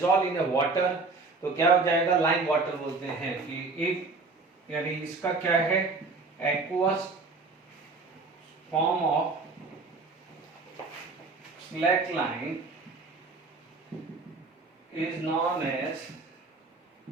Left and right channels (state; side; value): quieter; left; 3.9 dB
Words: in a water तो क्या हो जाएगा, लाइम वाटर बोलते हैं कि इफ, यानी इसका क्या है, aqueous form of slackline is known as